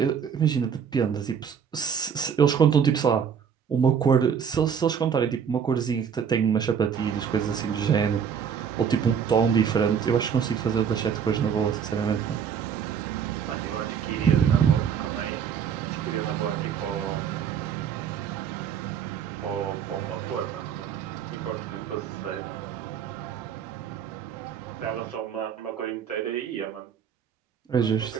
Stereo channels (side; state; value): left; quieter; 7.5 dB